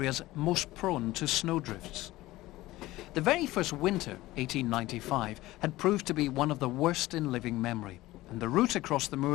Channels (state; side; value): quieter; right; 17.7 dB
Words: most prone to snowdrifts. The very first winter, 1895, had proved to be one of the worst in living memory, and the route across the